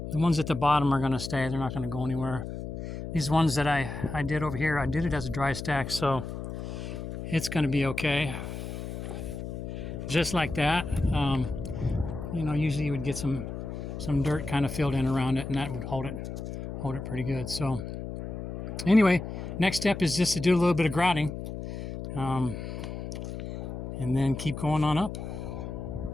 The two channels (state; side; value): noise; left; hum, 7 dB below the sound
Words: The ones at the bottom are going to stay. They're not going to go anywhere. These ones that I did over here, I did it as a dry stack, so it's going to be okay. Just like that. Usually you would get some dirt kind of filled in around it, and that would hold it pretty good. So Anyway, next step is just to do a little bit of grouting, and then keep going on up.